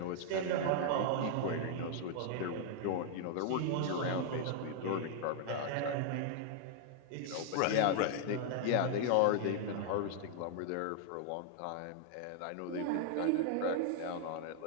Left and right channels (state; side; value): different; both; correlation -0.01